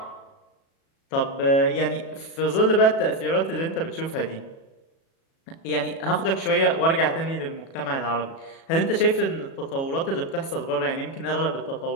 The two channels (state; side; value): late; right; 37 ms